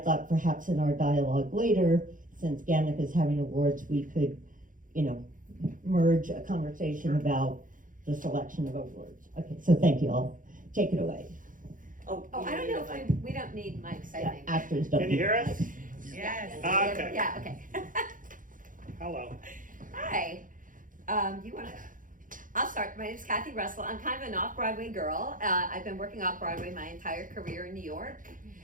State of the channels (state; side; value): late; left; 0.39 ms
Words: perhaps in our dialogue later, since GANYC is having awards, we could, merge a conversation about the selection of awards. Okay, so thank you all. Take it away. Oh, I don't know if we don't need mics, I Yeah, think. actors don't. Can you hear us? Yes. Okay. Yeah, okay. Hello. Hi. You want to? I'll start. My name is Cathy Russell. I'm kind of an off-Broadway girl. I've been working off-Broadway my entire career in New York.